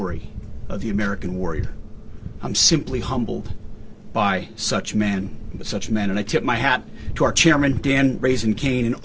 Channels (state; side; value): identical; both; correlation 1.00